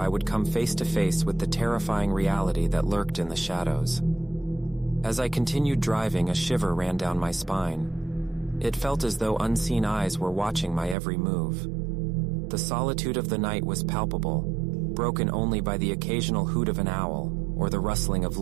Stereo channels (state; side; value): drops out; left; at 11.0 s